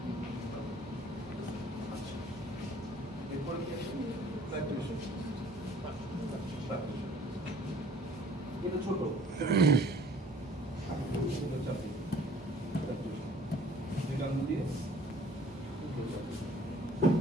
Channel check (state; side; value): normal; both; correlation 0.53